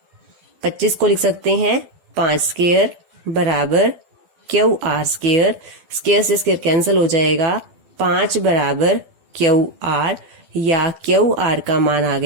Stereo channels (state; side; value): late; left; 12 ms